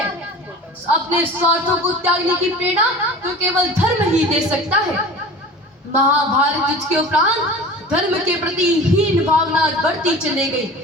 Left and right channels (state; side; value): normal; both; correlation 0.38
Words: अपने स्वार्थों को त्यागने की प्रेरणा तो केवल धर्म ही दे सकता है। महाभारत युद्ध के उपरांत धर्म के प्रति हीन भावना बढ़ती चली